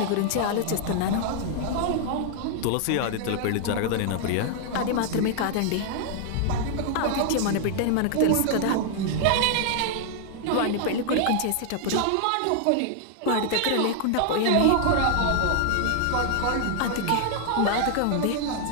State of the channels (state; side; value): different; both; correlation 0.00